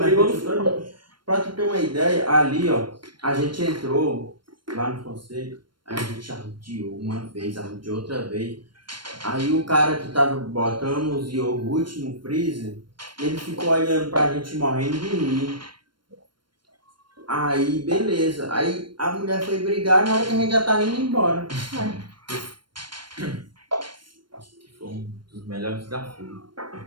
no Pra tu ter uma ideia, ali, ó, a gente entrou lá no Fonseca, a gente arrodeou uma vez, arrodeou outra vez. Aí o cara que tava botando os iogurte no freezer, ele ficou olhando pra gente morrendo de rir. Aí, beleza. Aí a mulher foi brigar na hora que a gente já tava indo embora. Acho que foi um dos melhores desafios.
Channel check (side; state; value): left; late; 0.72 ms